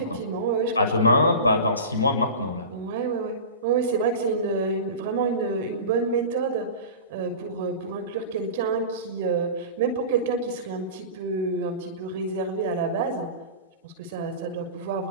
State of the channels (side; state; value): both; inverted; correlation -0.32